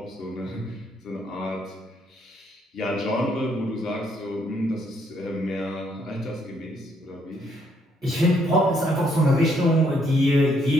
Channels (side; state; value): both; normal; correlation 0.71